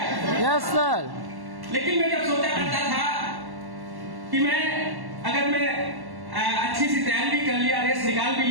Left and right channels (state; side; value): late; left; 1.1 ms